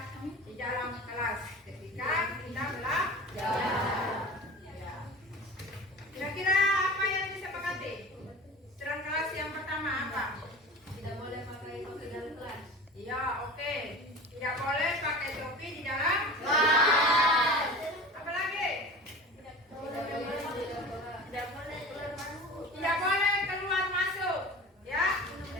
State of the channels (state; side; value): normal; both; correlation 0.36